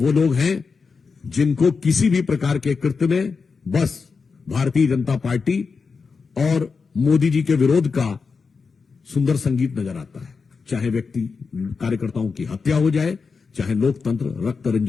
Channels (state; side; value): quieter; right; 5.0 dB